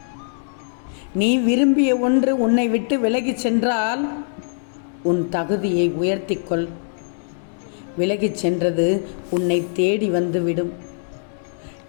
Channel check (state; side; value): silent; right; 63 dB below the other